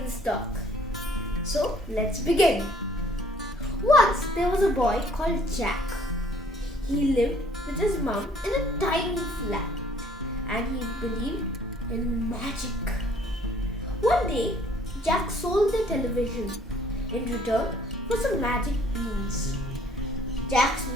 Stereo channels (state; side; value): normal; both; correlation 0.59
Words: Stalk. So let's begin. Once there was a boy called Jack. He lived with his mom in a tiny flat and he believed in magic. One day, Jack sold the television in return for some magic beans. Jack's